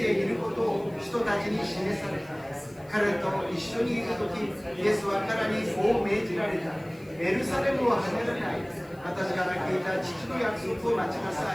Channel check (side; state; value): left; noise; hiss, 28 dB below the sound